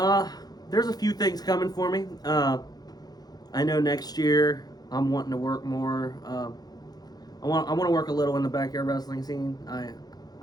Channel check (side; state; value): right; late; 0.19 ms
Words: There's a few things coming for me. I know next year I'm wanting to work more. I want to work a little in the backyard wrestling scene.